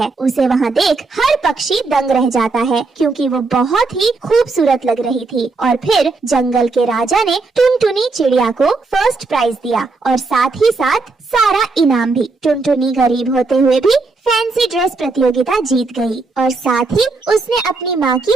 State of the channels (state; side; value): quieter; left; 3.8 dB